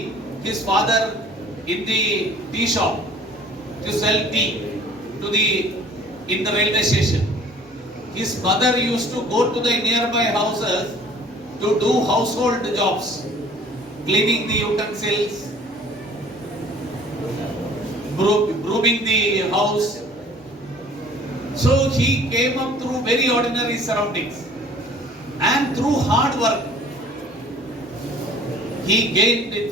his father in the tea shop to sell tea in the railway station. His mother used to go to the nearby houses to do household jobs, cleaning the utensils, brooming the house. So he came up through very ordinary surroundings, and through hard work he gained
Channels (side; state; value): both; normal; correlation 0.51